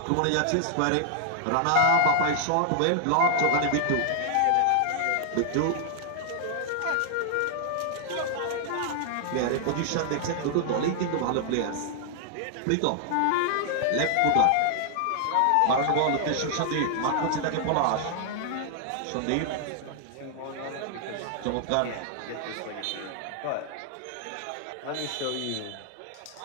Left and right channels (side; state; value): both; different; correlation 0.00